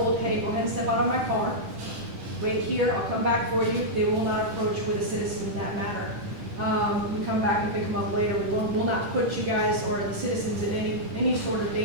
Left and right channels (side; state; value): left; late; 11 ms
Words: hey, go ahead and step out of my car, wait here, I'll come back for you. They will not approach with a citizen in that manner. We come back and pick them up later. We'll not put you guys or the citizens in any sort of